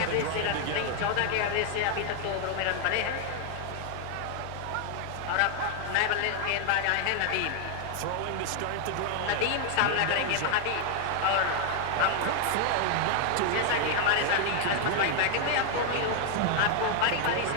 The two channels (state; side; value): different; both; correlation 0.00